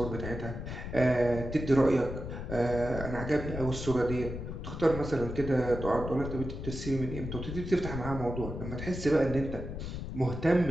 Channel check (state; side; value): noise; left; rumble, 7 dB below the sound